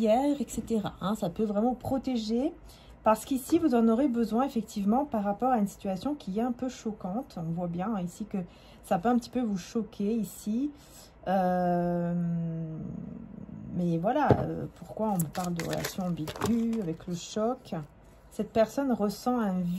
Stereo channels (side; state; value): both; identical; correlation 1.00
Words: etc. Hein, ça peut vraiment protéger. Parce qu'ici, vous en aurez besoin, effectivement, par rapport à une situation qui est un peu choquante. On voit bien, hein, ici, que ça peut un petit peu vous choquer, ici. Mais voilà, pourquoi on parle de relation ambiguë avec le choc? Cette personne ressent un